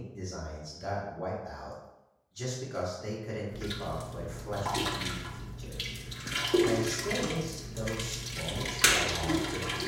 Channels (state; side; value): identical; both; correlation 1.00